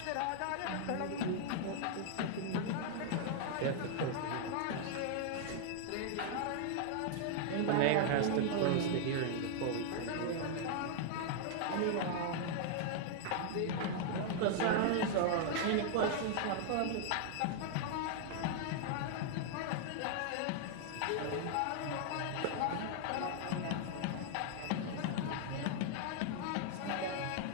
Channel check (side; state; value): both; different; correlation 0.00